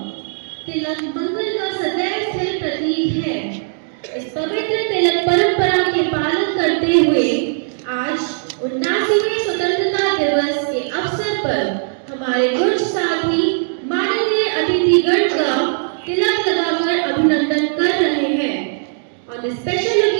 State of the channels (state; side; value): silent; left; digital silence